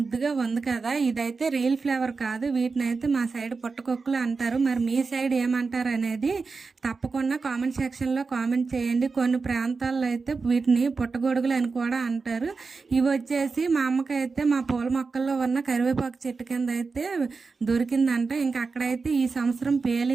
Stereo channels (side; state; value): left; quieter; 4.5 dB